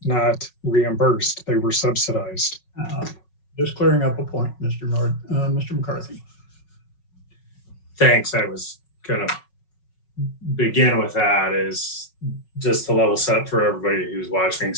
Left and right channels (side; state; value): right; late; 5.4 ms